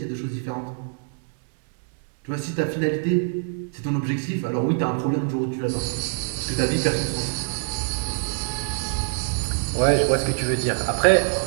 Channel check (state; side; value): silent; left; digital silence